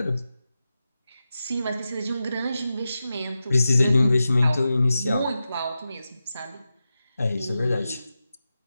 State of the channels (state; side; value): inverted; both; correlation -0.91